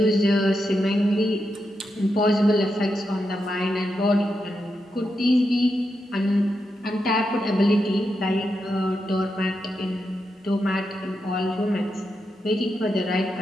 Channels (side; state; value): both; normal; correlation 0.86